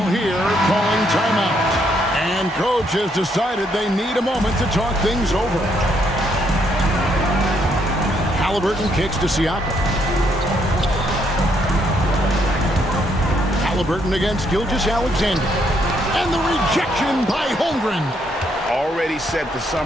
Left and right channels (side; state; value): both; normal; correlation 0.73